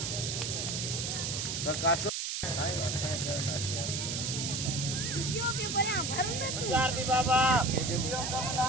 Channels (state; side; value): noise; right; hiss, 2 dB below the sound